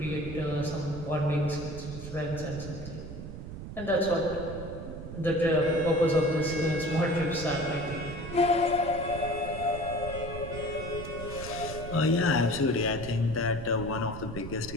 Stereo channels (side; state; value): right; noise; rumble, 10 dB below the sound